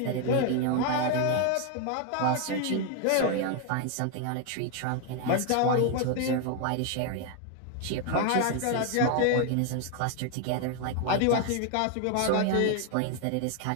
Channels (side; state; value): both; different; correlation 0.00